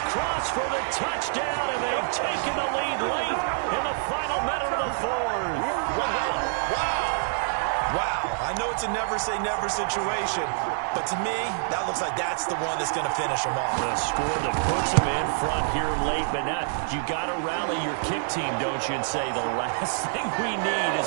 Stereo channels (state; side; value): silent; left; digital silence